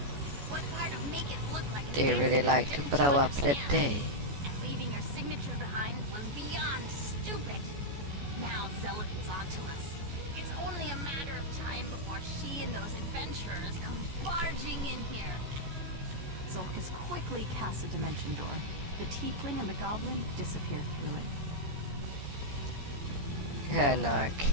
What part of make it look like a They really accident like to didn't you blow up the understand? day. And leaving your signature behind was beyond stupid. Now Zelith is onto us. It's only a matter of time before she and those adventurers come barging in here. Zulkus quickly casts a dimension door. The tiefling and the goblin disappear through it.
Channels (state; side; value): late; left; 14 ms